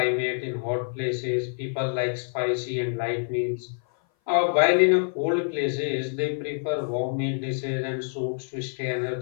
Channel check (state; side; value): silent; right; 57 dB below the other